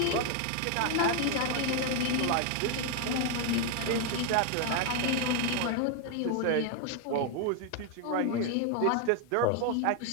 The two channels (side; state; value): both; different; correlation 0.01